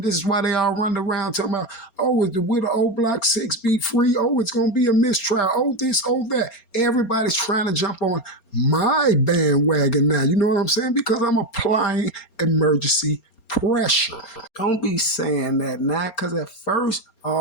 this is why they all run around talking about, oh, is the widow old Block 6 be free? Oh, it's going to be a mistrial. Oh, this, oh, that. Everybody's trying to jump on my bandwagon now. You know what I'm saying? Because I'm applying emergency pressure. Don't be saying that now, because at first,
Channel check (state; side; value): late; right; 4.3 ms